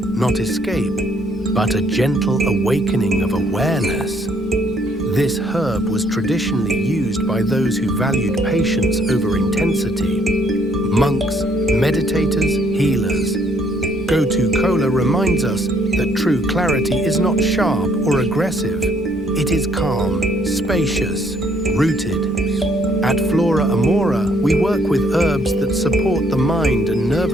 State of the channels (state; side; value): normal; both; correlation 0.67